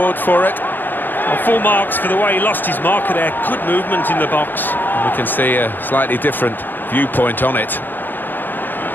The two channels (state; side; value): late; right; 0.092 ms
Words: for it. Well, full marks for the way he lost his marker there. Good movement in the box. And we can see a slightly different viewpoint on it.